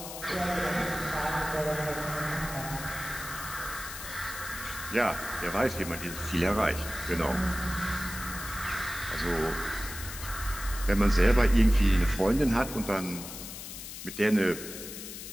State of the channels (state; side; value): noise; left; hiss, 10 dB below the sound